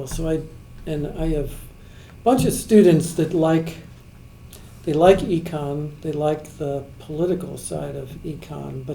so I have a bunch of students that like econ, they like the political side of econ,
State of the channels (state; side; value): identical; both; correlation 1.00